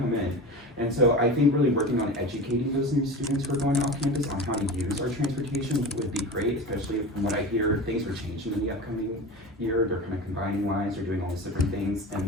in. And so I think really working on educating those new students who are going off campus on how to use our transportation would be great, especially from what I hear, things are changing in the upcoming year. They're kind of combining lines, they're doing all these different things.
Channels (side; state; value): both; normal; correlation 0.30